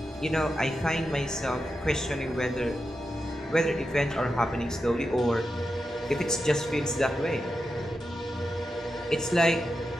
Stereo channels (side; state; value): both; normal; correlation 0.89